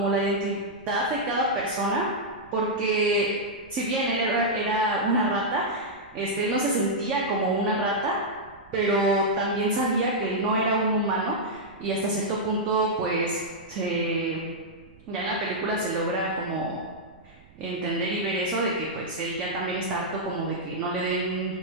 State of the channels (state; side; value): noise; right; rumble, 25 dB below the sound